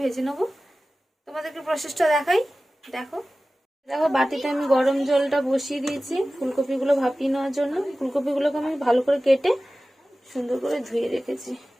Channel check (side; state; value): both; normal; correlation 0.96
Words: নেবো। তোমাদেরকে প্রসেসটা দেখাই, দেখো। দেখো বাটিতে আমি গরম জলটা বসিয়ে দিয়েছি ফুলকপিগুলো ভাপিয়ে নেওয়ার জন্য। ফুলকপিগুলোকে আমি ভালো করে কেটে সুন্দর করে ধুয়ে রেখেছি,